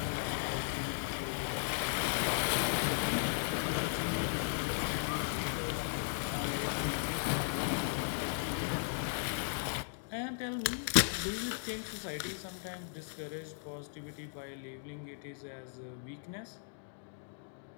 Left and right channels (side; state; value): right; silent; digital silence